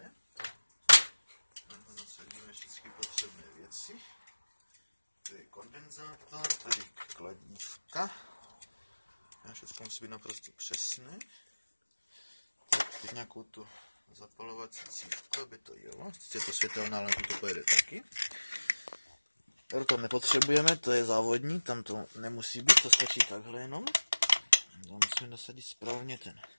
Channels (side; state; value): both; inverted; correlation -1.00